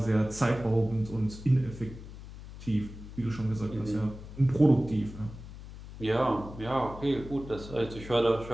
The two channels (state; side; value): noise; left; hum, 14 dB below the sound